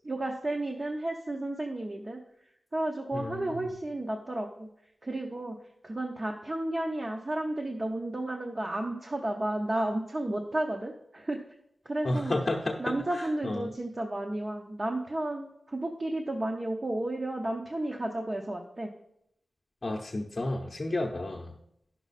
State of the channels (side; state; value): both; normal; correlation 0.96